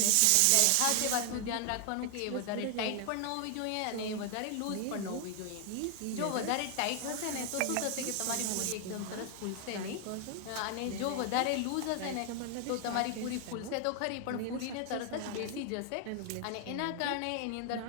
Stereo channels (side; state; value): both; different; correlation 0.00